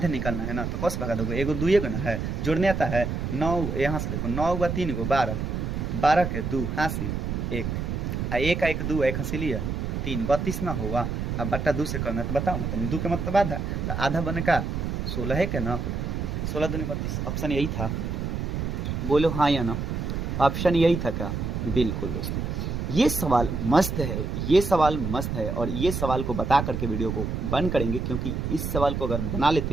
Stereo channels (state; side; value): noise; right; rumble, 2 dB below the sound